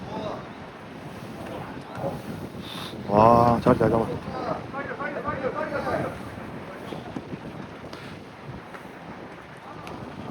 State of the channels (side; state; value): both; identical; correlation 1.00